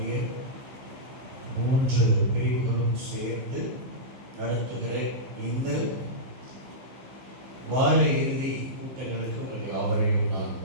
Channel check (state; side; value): late; left; 16 ms